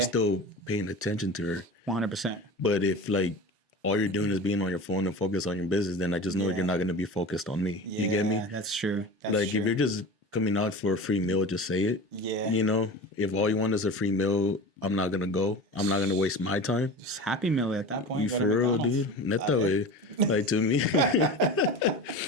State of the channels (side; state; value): both; normal; correlation 0.33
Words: still paying attention to her. 100%. But if like all you're doing is being on your phone and focus on your business, then I just know you're not going to be focused on me. You get me? That's true. That's Like true. if you're just coming out for a free meal, just say it. Yeah. You know, if all you want is a free meal, I'm not gonna go. I'm not gonna waste my time. It's Happy Meal at that point. You go to for real, McDonald's. dude? Not that way. Like to me,